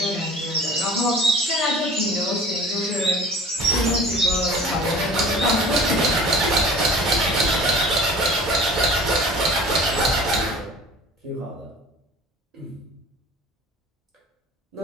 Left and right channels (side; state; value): both; normal; correlation 0.43